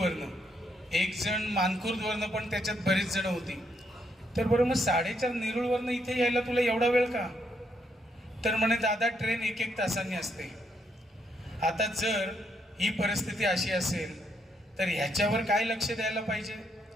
एक जण मानखुर्दवरनं, पण त्याच्यात बरेच जण होती। तर बरं मग 4:30 नेरुळवरनं इथे यायला तुला एवढा वेळ का? तर म्हणे दादा ट्रेन 1-1 तासांनी असते। आता जर ही परिस्थिती अशी असेल तर ह्याच्यावर काय लक्ष द्यायला पाहिजे?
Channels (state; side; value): normal; both; correlation 0.76